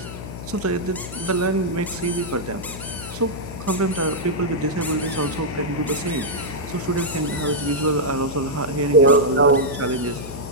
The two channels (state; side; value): noise; left; hum, 11 dB below the sound